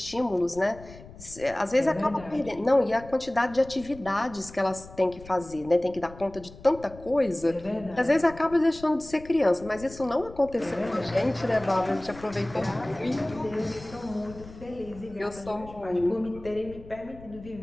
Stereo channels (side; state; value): left; noise; rumble, 18 dB below the sound